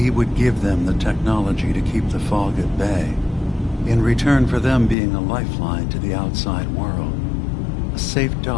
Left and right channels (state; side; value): drops out; right; at 5.0 s